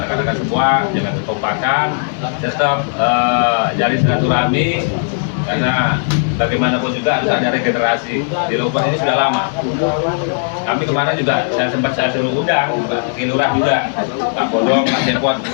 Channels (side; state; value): right; silent; digital silence